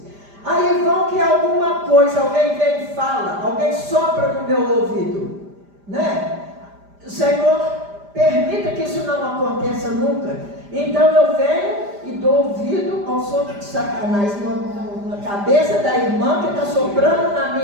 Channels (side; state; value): left; late; 5.0 ms